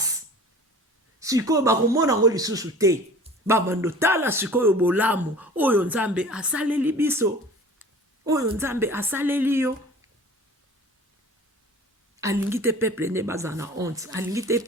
sikoyo bakomona ngo lisusu te. Babando tala sikoyo bolamu oyo nzambe asaleli biso oyo nzambe asaleli yo. Alingi te peuple ne baza na honte alingi te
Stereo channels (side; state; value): both; normal; correlation 0.43